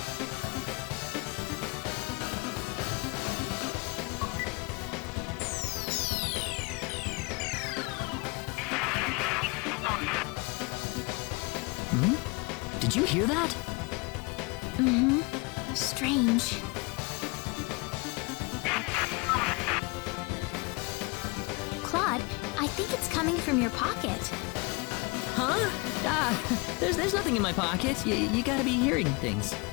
Did you hear that? Strange. Claude, I think it's coming from your pocket. Huh? There's nothing in my pocket. You gotta be hearing things.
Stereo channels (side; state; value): right; quieter; 28.0 dB